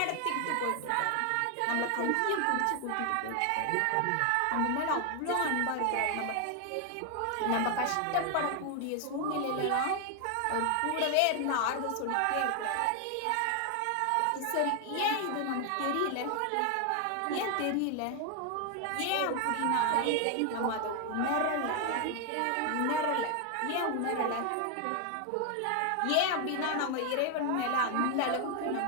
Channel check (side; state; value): both; different; correlation 0.00